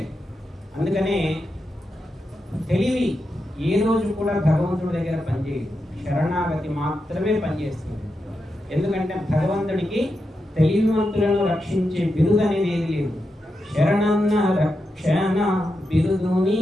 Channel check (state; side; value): normal; both; correlation 0.87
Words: అందుకనే తెలివి ఏ రోజు కూడా భగవంతుడి దగ్గర పనిచేయదు, శరణాగతి మాత్రమే పనిచేస్తుంది. ఎందుకంటే భగవంతుడికి తెలివివంతులను రక్షించే బిరుదు అనేది ఏది లేదు. శరణన్న రక్షణ బిరుదు